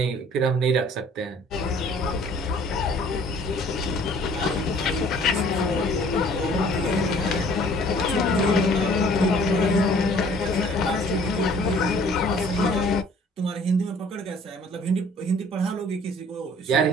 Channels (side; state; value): both; normal; correlation 0.54